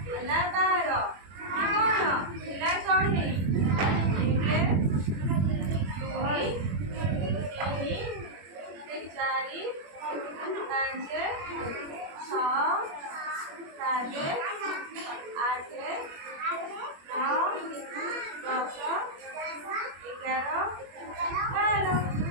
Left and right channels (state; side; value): late; left; 21 ms